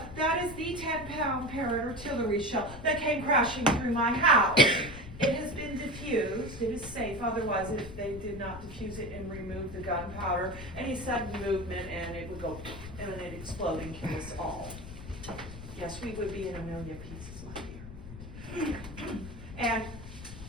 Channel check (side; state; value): left; noise; rumble, 12 dB below the sound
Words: that is the 10-pound Parrott artillery shell that came crashing through my house. It has been diffused. It is safe. Otherwise, if they did not diffuse it and remove the gunpowder, any sudden movement and it would go and it'd explode and kill us all. Yes, we would be in a million pieces, my dear.